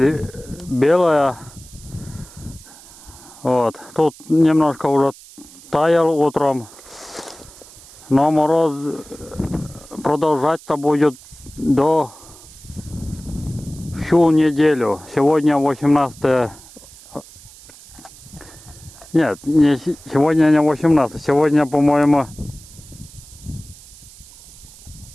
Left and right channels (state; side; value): noise; right; hiss, 21 dB below the sound